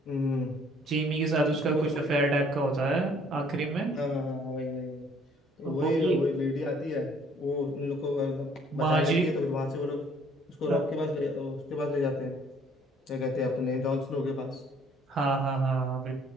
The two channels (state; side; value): normal; both; correlation 0.60